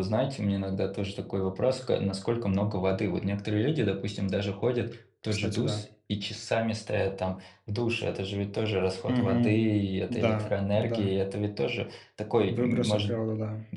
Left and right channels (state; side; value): identical; both; correlation 1.00